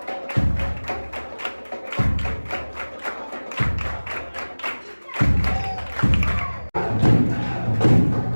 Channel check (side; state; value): both; inverted; correlation -1.00